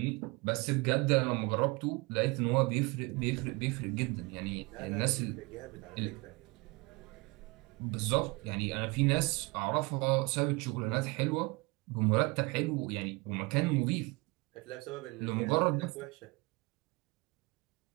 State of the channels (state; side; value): quieter; left; 26.2 dB